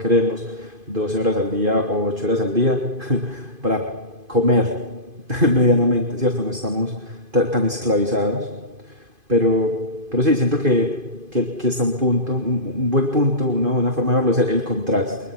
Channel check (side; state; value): left; late; 2.5 ms